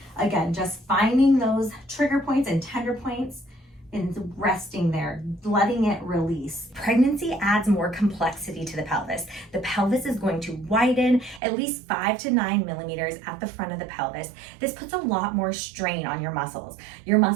Again, just finding those trigger points and tender points and resting there, letting it release. Pregnancy adds more complexity to the pelvis. The pelvis is going to widen at least 5 to 9 millimeters at the front of the pelvis. This puts a lot more strain on your muscles. Your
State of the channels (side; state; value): left; drops out; at 11.4 s